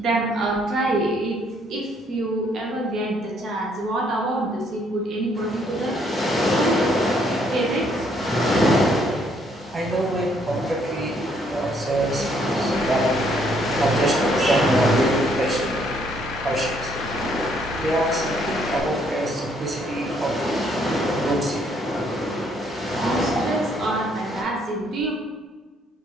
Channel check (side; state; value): both; normal; correlation 0.68